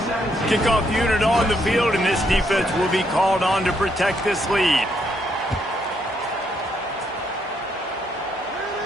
Kickoff unit on the field, and this defense will be called on to protect this lead.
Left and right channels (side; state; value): both; normal; correlation 0.74